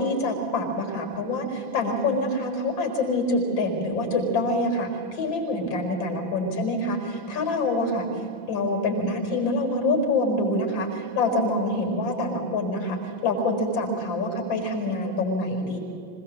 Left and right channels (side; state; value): right; late; 5.9 ms